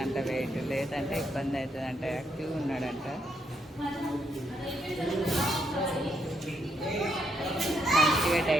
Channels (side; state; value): both; normal; correlation 0.76